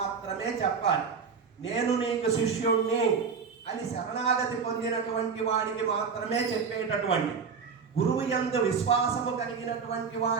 చెప్పాలి. నేను నీకు శిష్యుణ్ణి అని శరణాగతి పొందినటువంటి వాడికి మాత్రమే చెప్పేటటువంటి, గురువు యందు విశ్వాసము కలిగినటువంటి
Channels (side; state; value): left; quieter; 5.7 dB